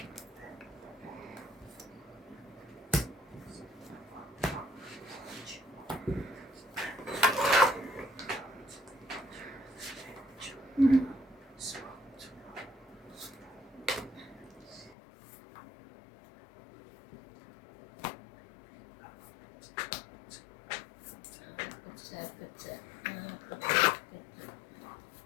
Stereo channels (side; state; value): right; drops out; at 15.0 s